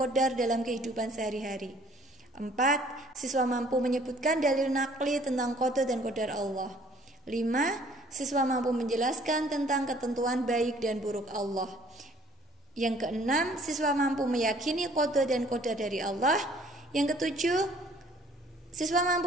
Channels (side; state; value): both; normal; correlation 0.57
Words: dalam kehidupan sehari-hari. 4. Siswa mampu menyebutkan dalil nakli tentang qada dan qadar Allah. 5. Siswa mampu menjelaskan tentang ketentuan baik dan buruk Allah. Yang keenam, siswa mampu meyakini qada dan qadar dari Allah. Yang ketujuh, siswa